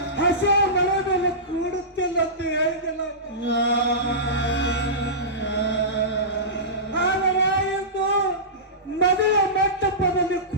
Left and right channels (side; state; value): both; normal; correlation -0.20